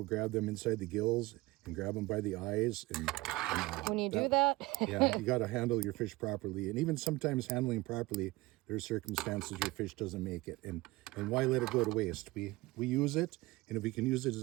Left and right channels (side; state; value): left; quieter; 20.9 dB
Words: grab them inside the gills and grab them by the eyes. And when you do that, yeah, you got to handle your fish properly. And even sometimes handling properly, there's circumstances your fish doesn't make it. And why let it go to waste? We use it, and if we can use it